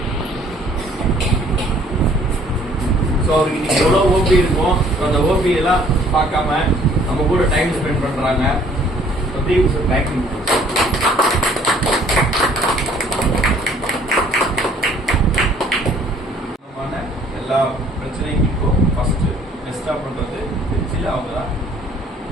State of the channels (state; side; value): normal; both; correlation 0.58